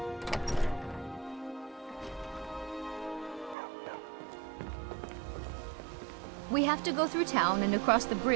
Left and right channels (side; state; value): left; drops out; at 3.6 s